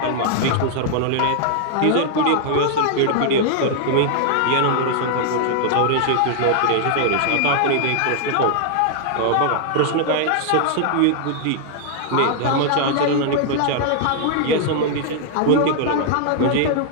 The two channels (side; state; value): both; different; correlation 0.00